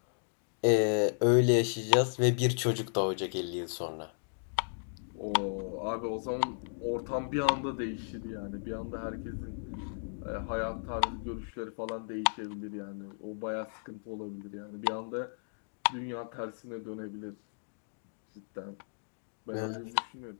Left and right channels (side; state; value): right; silent; digital silence